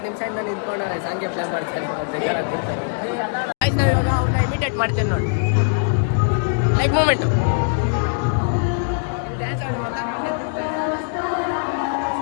ನಿಮಿಷದಿಂದ ನಿಂತ್ಕೊಂಡವ್ರೆ ಸಾಂಗ್ಗೆ ಪ್ಲೇ ಮಾಡ್ತಾರೆ. ಬೇಜಾರಾಗ್ಬಿಡ್ತಾರೆ ಗೈಸ್. ನಾವು ಇವಾಗ ಅವ್ರನ್ನ ಇಮಿಟೇಟ್ ಮಾಡ್ತೇವೆ ನೋಡಿ. ಲೈಕ್ ಮೂಮೆಂಟು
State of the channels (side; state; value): right; silent; digital silence